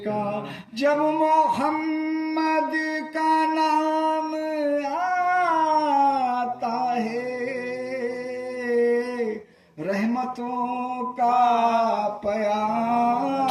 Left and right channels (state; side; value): identical; both; correlation 1.00